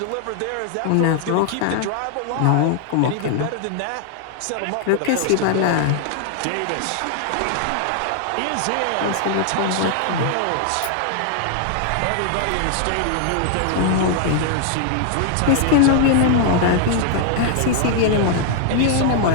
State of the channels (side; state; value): both; different; correlation 0.00